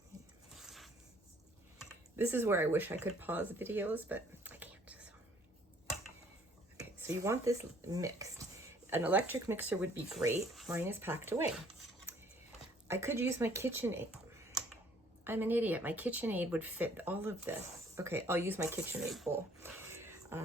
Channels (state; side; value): normal; both; correlation 0.60